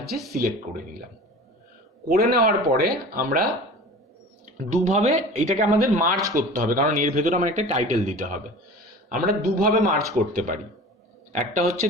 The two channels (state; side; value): normal; both; correlation 0.39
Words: সিলেক্ট করে নিলাম। করে নেওয়ার পরে আমরা দুভাবে এটাকে আমাদের মার্জ করতে হবে, কারণ এর ভেতরে আমার একটা টাইটেল দিতে হবে। আমরা দুভাবে মার্জ করতে পারি। একটা হচ্ছে